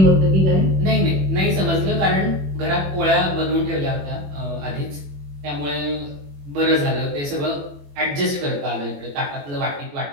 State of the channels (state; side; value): late; left; 21 ms